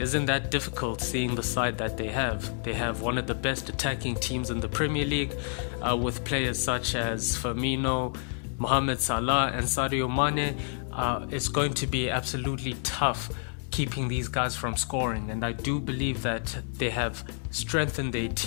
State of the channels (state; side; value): silent; right; 56 dB below the other